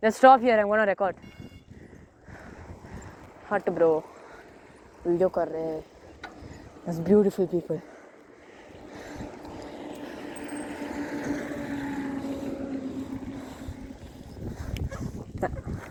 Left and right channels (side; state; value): both; identical; correlation 1.00